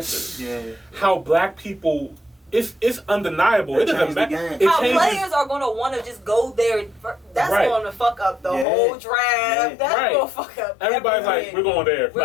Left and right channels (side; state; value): right; drops out; at 8.7 s